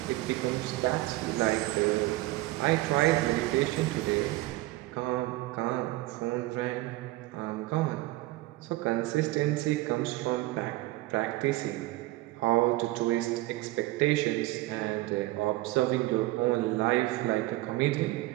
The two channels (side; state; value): left; quieter; 18.5 dB